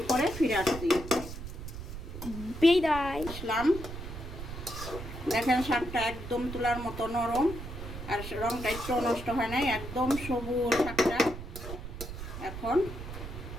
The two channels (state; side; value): noise; right; rumble, 9 dB below the sound